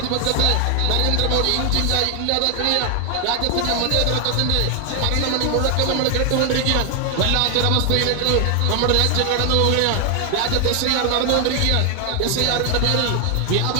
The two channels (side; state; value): both; different; correlation 0.00